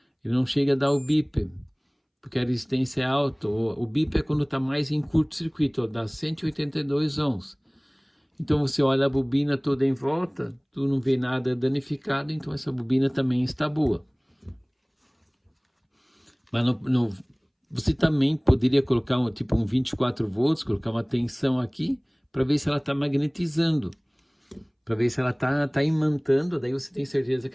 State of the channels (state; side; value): identical; both; correlation 1.00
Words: ele não chega a dar o bip, porque a resistência é alta. O bip é quando está mais em curto-circuito, dá 182 ohms. Então você olha a bobina toda em volta, tu não vê nada danificado, então essa bobina também está boa. Mas você também poderia colocar um 24 volts, colocar uma tensão aqui, para ver se ela está magnetizando, para ver se ela está imantando, daí você tem certeza